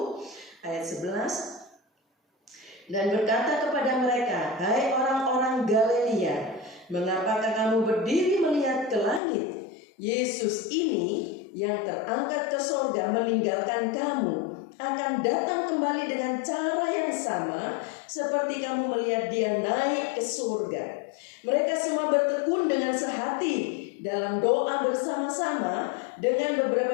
ayat 11. Dan berkata kepada mereka, hai orang-orang Galilea, mengapakah kamu berdiri melihat ke langit? Yesus ini yang terangkat ke surga meninggalkan kamu, akan datang kembali dengan cara yang sama seperti kamu melihat dia naik ke surga. Mereka semua bertekun dengan sehati dalam doa bersama-sama dengan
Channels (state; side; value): drops out; right; at 9.2 s